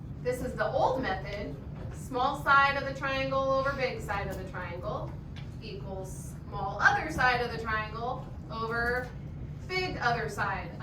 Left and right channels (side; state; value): both; identical; correlation 1.00